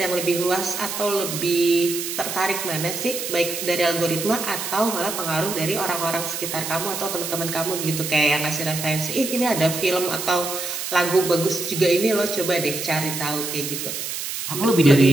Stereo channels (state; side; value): noise; right; hiss, 5 dB below the sound